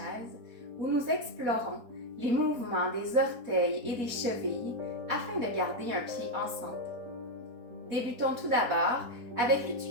où nous explorons les mouvements des orteils et des chevilles afin de garder un pied en santé. Débutons tout d'abord avec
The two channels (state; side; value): late; left; 4.2 ms